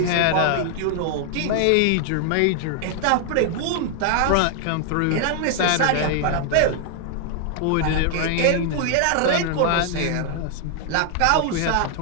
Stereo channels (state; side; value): different; both; correlation 0.00